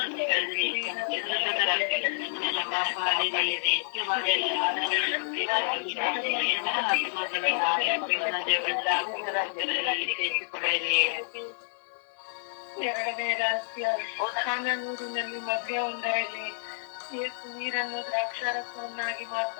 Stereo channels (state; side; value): silent; right; digital silence